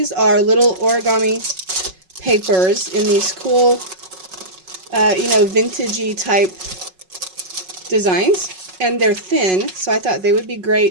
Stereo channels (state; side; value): late; left; 5.4 ms